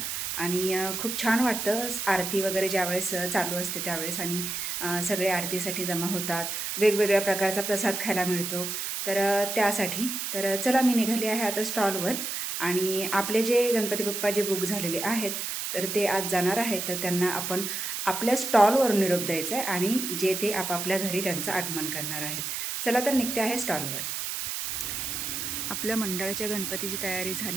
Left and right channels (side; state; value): right; noise; hiss, 3 dB below the sound